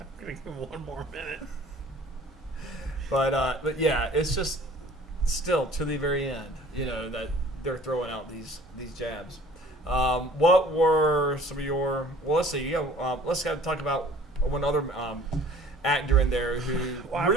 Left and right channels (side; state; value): both; normal; correlation 0.50